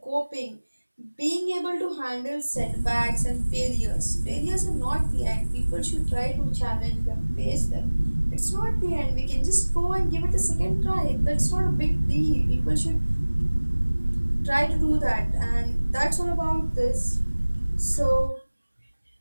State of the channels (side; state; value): both; inverted; correlation -1.00